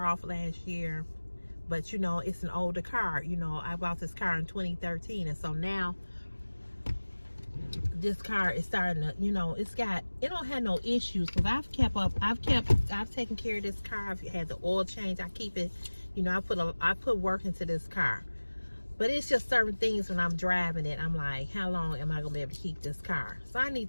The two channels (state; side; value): inverted; both; correlation -1.00